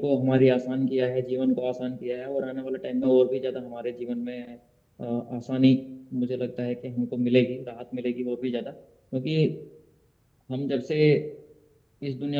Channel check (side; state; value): both; identical; correlation 1.00